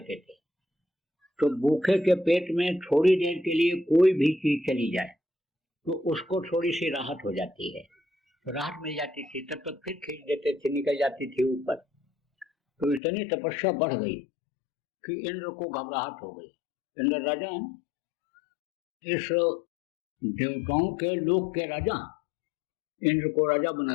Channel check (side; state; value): right; drops out; at 13.0 s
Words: थे। तो भूखे के पेट में थोड़ी देर के लिए कोई भी चीज चली जाए तो उसको थोड़ी सी राहत हो जाती है, तो राहत मिल जाती थी। तब तक फिर खींच देते थे, निकल जाती थी ऊपर। तो इतनी तपस्या बढ़ गई कि इंद्र को घबराहट हो गई। इंद्र राजा, इस देवताओं के लोक के राजा, इंद्र को राजा बना